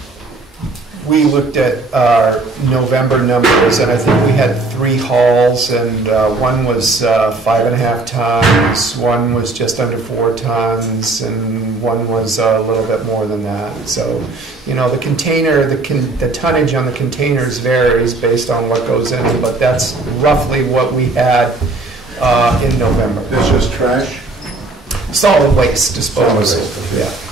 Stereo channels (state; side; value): quieter; left; 3.3 dB